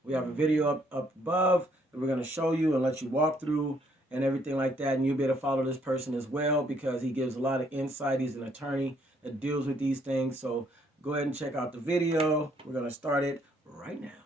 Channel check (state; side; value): normal; both; correlation 0.68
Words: We have a video up above that we're gonna show you and let you walk through and everything like that. And you'll be able to follow this person as well because he gives a lot of insight. He's an attorney that deals with these things. So go ahead and check out the video. We're gonna start it right